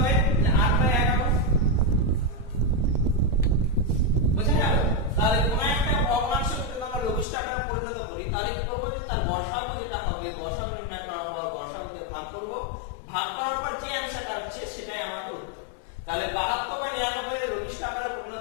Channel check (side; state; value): right; drops out; at 7.2 s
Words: 8/11 বুঝা গেল তাহলে কোন একটা ভগ্নাংশকে যদি আমরা লঘিষ্ঠ আকারে পরিণত করি তাহলে কি করব তার গসাগু যেটা হবে গসাগু নির্ণয় করা আমরা গসাগু দিয়ে ভাগ করব ভাগ করার পর যে অ্যানসারটা হচ্ছে সেটাই আমাদের উত্তর তাহলে 72/99 এর লঘিষ্ঠ আকারে